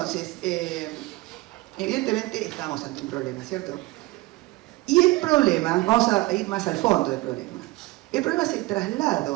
evidentemente estamos ante un problema, ¿cierto? Y el problema, vamos a ir más al fondo del problema, el problema es el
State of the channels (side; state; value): left; quieter; 20.7 dB